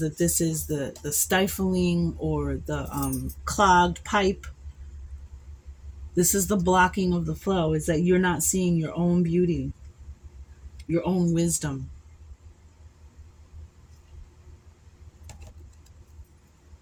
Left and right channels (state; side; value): identical; both; correlation 1.00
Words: this is the stifling or the clogged pipe. This is the blocking of the flow, is that you're not seeing your own beauty, your own wisdom.